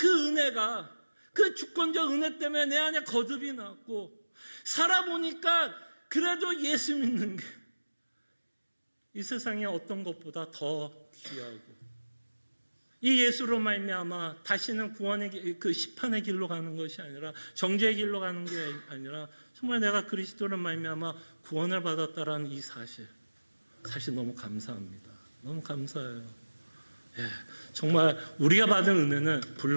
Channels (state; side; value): inverted; both; correlation -1.00